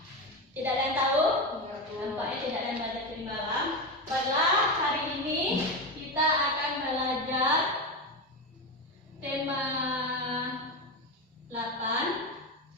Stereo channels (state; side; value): normal; both; correlation 0.16